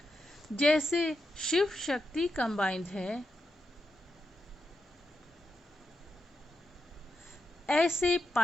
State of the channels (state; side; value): normal; both; correlation 0.86